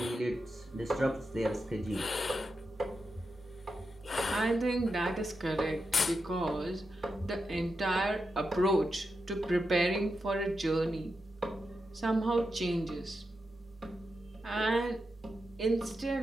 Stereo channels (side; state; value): both; normal; correlation 0.88